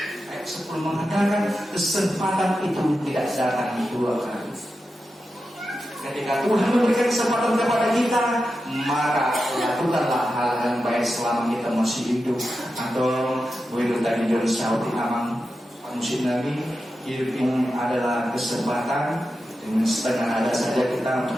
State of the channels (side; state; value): both; normal; correlation 0.90